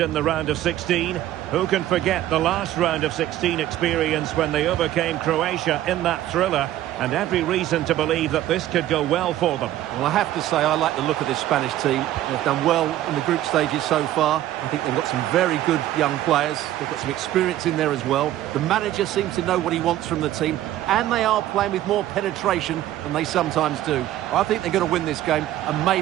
in the round of 16. Who can forget the last round of 16 experience when they overcame Croatia in that thriller? And every reason to believe that this could go well for them. Well, I have to say I like the look of this Spanish team. They've done well in the group stages so far. I think they've got some very good young players. They've got some experience in there as well. The manager seems to know what he wants from the team, and they are playing with more penetration than they sometimes do. I think they're going to win this game and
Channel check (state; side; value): quieter; left; 13.4 dB